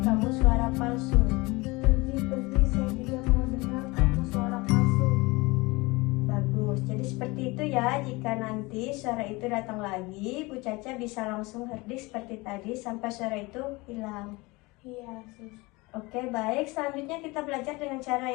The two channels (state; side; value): quieter; right; 23.8 dB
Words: kamu suara palsu. Pergi, saya tidak mau dengar kamu suara palsu. Bagus, jadi seperti itu ya. Jika nanti suara itu datang lagi, Bu Caca bisa langsung herdik seperti tadi sampai suara itu hilang. Iya, Sus. Oke, baik. Selanjutnya kita belajar dengan cara